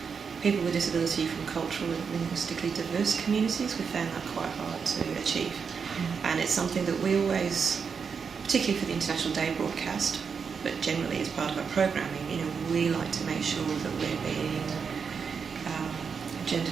people with disability from cultural and linguistically diverse communities. We found that quite hard to achieve. And it's something that we always, particularly for the International Day broadcast, but generally as part of our programming, we like to make sure that we're being gender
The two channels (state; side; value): quieter; left; 6.0 dB